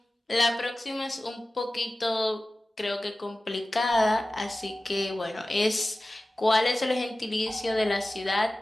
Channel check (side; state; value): both; normal; correlation 0.96